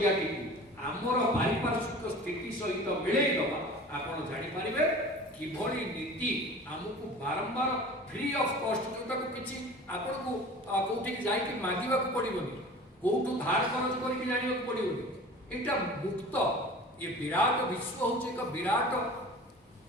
टी आमर पारिपार्श्विक स्थिति सहित मिलईदबा आपण जानीपारे किभली नीति आमको बारंबार फ्री ऑफ कॉस्ट जोटा को किसी आपण को कोठी जाइए मागिबा को पड़िबनी कोठू धार खर्च करके जानिबा को पड़िबनी एटा मुक्त ये विराट विश्व होचे एक विराट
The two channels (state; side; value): normal; both; correlation 0.40